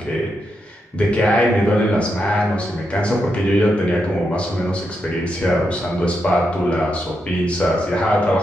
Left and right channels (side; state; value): both; normal; correlation 0.84